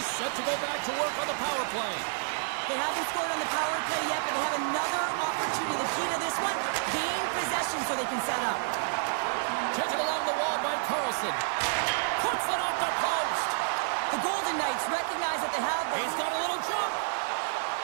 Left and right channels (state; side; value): silent; left; 58 dB below the other